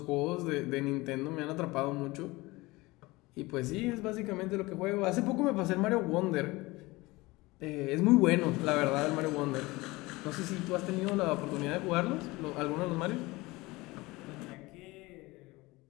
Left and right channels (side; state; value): right; quieter; 21.7 dB